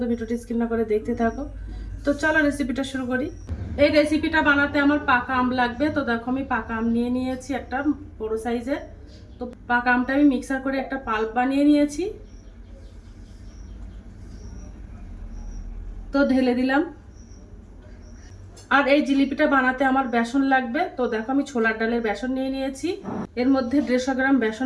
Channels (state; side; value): identical; both; correlation 1.00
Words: ভিডিওটি স্কিপ না করে দেখতে থাকো। তো চলো রেসিপিটা শুরু করি। এই রেসিপিটা বানাতে আমার পাকা আম লাগবে। তো দেখো আমি পাকা আম নিয়ে নিয়েছি একটা বড় সাইজের। তো পাকা আমটা আমি মিক্সার করে একটা পাল্প বানিয়ে নিয়েছি। তো ঢেলে দিলাম। আর এই জিলিপিটা বানাতে আমার বেসন লাগবে। তো দেখো আমি ছোলার ডালের বেসন নিয়ে নিয়েছি। এর মধ্যে 150 গ্রাম